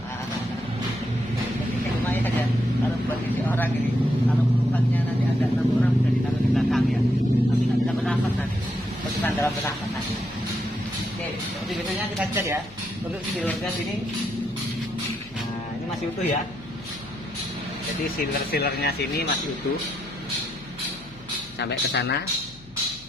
lumayan aja. Kalau buat isi orang ini, kalau penumpangnya nanti ada 6 orang bisa ditaruh di belakang ya, tapi nggak bisa bernafas nanti, penumpang dalam bernafas nanti. Oke, seperti biasanya kita cek ya untuk sealernya sini. Nah, ini masih utuh ya. Jadi sealernya sini masih utuh sampai ke sana,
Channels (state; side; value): noise; left; hum, 22 dB below the sound